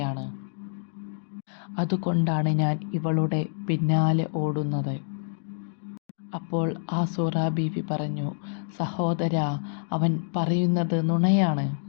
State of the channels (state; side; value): silent; right; digital silence